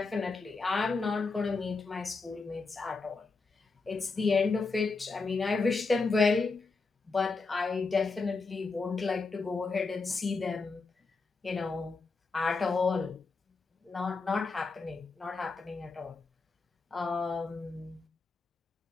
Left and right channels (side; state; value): right; quieter; 4.1 dB